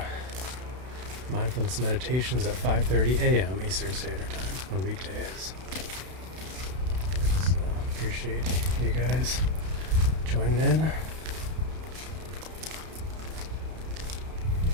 mindfulness meditations at 5:30 a.m. Eastern Standard Time on weekdays. So appreciate you guys joining in.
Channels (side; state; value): left; late; 32 ms